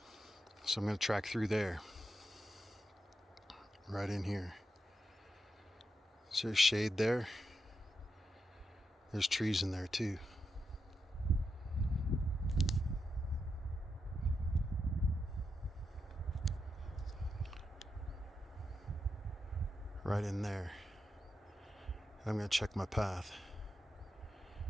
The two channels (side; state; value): both; normal; correlation 0.86